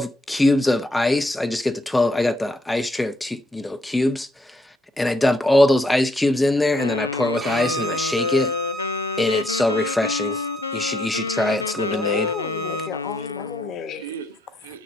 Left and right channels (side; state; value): both; normal; correlation 0.73